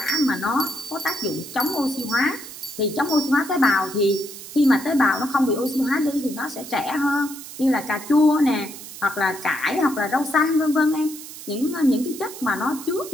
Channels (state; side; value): noise; right; hiss, 13 dB below the sound